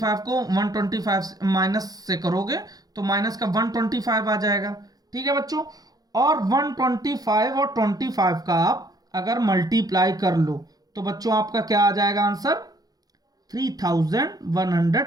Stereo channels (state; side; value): late; left; 0.18 ms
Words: को 125 माइनस से करोगे तो माइनस का 125 आ जाएगा। ठीक है बच्चों, और 125 और 25 का आप अगर मल्टीप्लाई कर लो तो बच्चों आपका क्या आ जाएगा आंसर